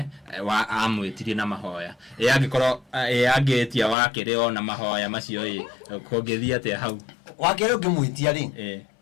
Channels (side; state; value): right; drops out; at 4.0 s